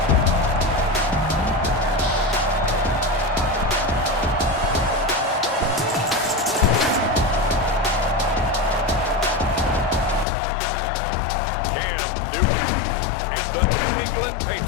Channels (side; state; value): right; drops out; at 10.2 s